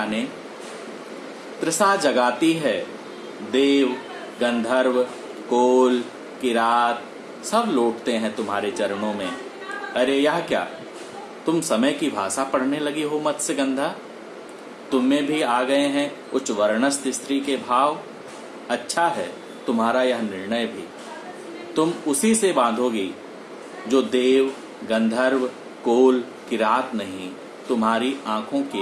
ने। तृषा जगाती है देव गंधर्व कोल किरात, सब लौटते हैं तुम्हारे चरणों में। अरे यह क्या, तुम समय की भाषा पढ़ने लगी हो मत्स्यगंधा? तुम में भी आ गए हैं उच्च वर्णस्थ स्त्री के भाव। अच्छा है तुम्हारा यह निर्णय भी, तुम उसी से बांधोगी जो देव गंधर्व कोल किरात नहीं, तुम्हारी आंखों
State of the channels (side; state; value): both; identical; correlation 1.00